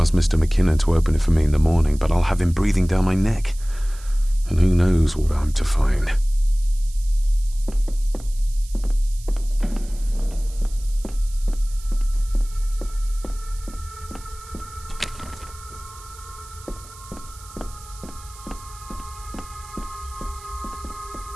Mr. McKinnon to open it for me in the morning, but I'll have him breathing down my neck. And who knows what I'm to find.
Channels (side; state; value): right; noise; hiss, 20 dB below the sound